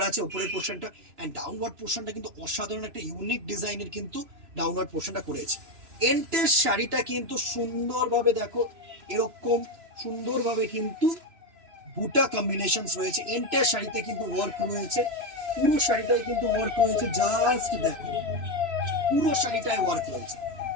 আছে উপরের পোর্শনটা। অ্যান্ড ডাউনওয়ার্ড পোর্শনটা কিন্তু অসাধারণ একটা ইউনিক ডিজাইনের কিন্তু ডাউনওয়ার্ড পোর্শনটা করেছে। এন্টের শাড়িটা কিন্তু সুন্দরভাবে দেখো, এরকম সুন্দরভাবে কিন্তু বুটা কম্বিনেশনস রয়েছে। এন্টার শাড়িতে কিন্তু ওয়ার্ক রয়েছে, পুরো শাড়িটাই কিন্তু ওয়ার্ক রয়েছে। জাস্ট দেখো, পুরো শাড়িটায় ওয়ার্ক রয়েছে,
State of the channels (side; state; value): left; late; 3.0 ms